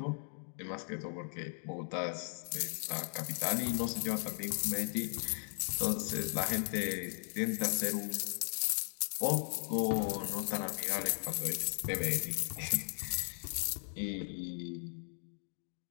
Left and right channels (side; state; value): right; silent; 53 dB below the other